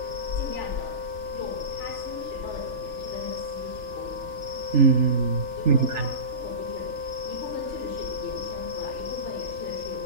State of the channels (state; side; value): late; left; 3.4 ms